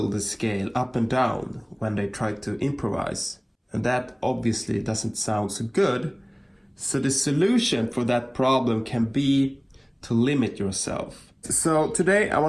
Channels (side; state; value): both; identical; correlation 1.00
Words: the scale up and down when they try to improvise. And that obviously doesn't sound so good. So the solution for that problem can be to limit yourself. So today I